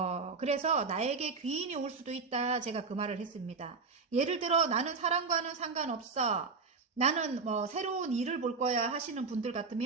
그래서 나에게 귀인이 올 수도 있다. 제가 그 말을 했습니다. 예를 들어 나는 사랑과는 상관없어. 나는 뭐 새로운 일을 볼 거야 하시는 분들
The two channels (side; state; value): left; quieter; 4.6 dB